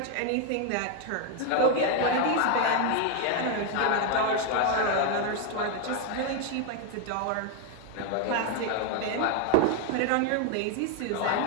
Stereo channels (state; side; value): different; both; correlation 0.01